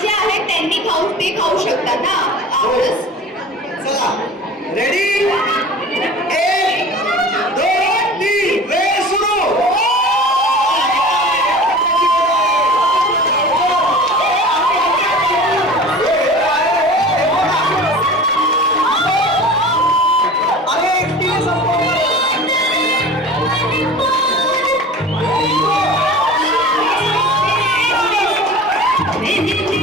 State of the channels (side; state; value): both; normal; correlation 0.38